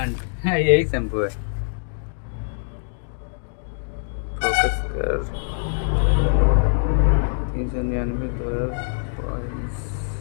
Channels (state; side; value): silent; right; digital silence